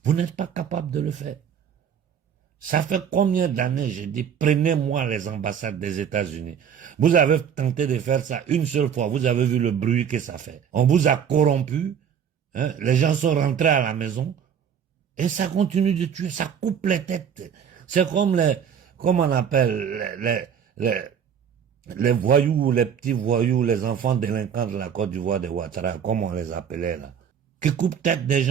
Vous n'êtes pas capable de le faire. Ça fait combien d'années, j'ai dit, prenez-moi les ambassades des États-Unis. Vous avez tenté de faire ça une seule fois, vous avez vu le bruit que ça fait. On vous a corrompu, hein, les gens sont rentrés à la maison, et ça continue de tuer, ça coupe les têtes. C'est comme comment on appelle, les voyous, les petits voyous, les enfants délinquants de la Côte d'Ivoire de Ouattara, comme on les appelait là, qui coupent tête des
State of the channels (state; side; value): quieter; left; 8.0 dB